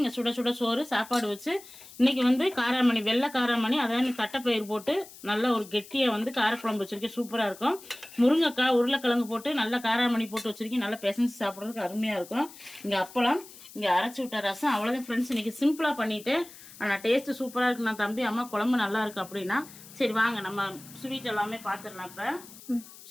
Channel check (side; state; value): left; noise; hiss, 19 dB below the sound